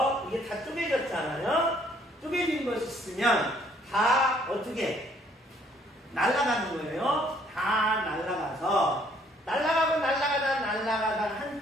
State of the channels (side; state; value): both; normal; correlation 0.63